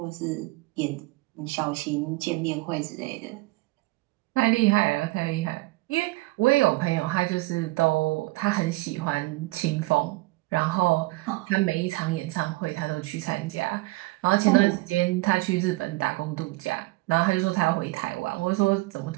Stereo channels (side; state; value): left; quieter; 21.5 dB